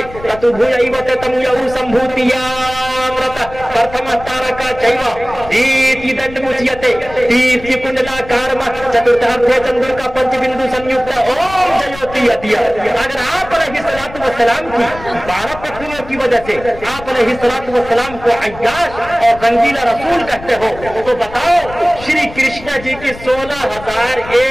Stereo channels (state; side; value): noise; left; rumble, 16 dB below the sound